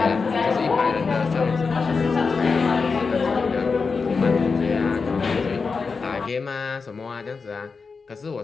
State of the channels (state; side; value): quieter; right; 4.8 dB